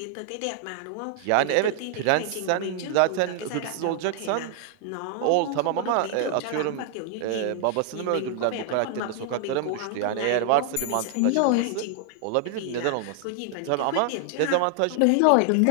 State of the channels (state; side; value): different; both; correlation 0.00